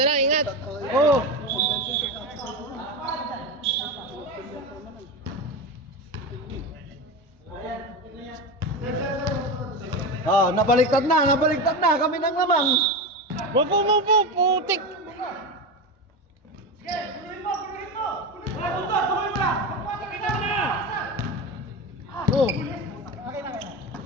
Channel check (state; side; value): normal; both; correlation 0.20